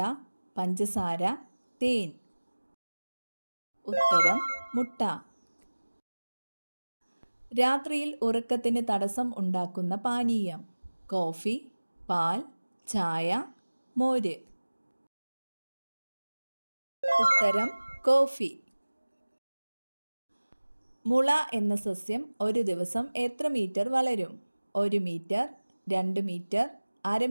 പഞ്ചസാര, തേൻ. ഉത്തരം മുട്ട. രാത്രിയിൽ ഉറക്കത്തിന് തടസ്സം ഉണ്ടാക്കുന്ന പാനീയം: കോഫി, പാൽ, ചായ, മോര്. ഉത്തരം കോഫി. മുള എന്ന സസ്യം ഒരു ദിവസം എത്ര മീറ്റർ വളരും? 1 മീറ്റർ, 2 മീറ്റർ, അര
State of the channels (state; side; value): inverted; both; correlation -1.00